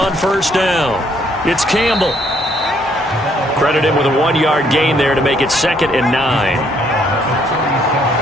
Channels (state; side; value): normal; both; correlation 0.68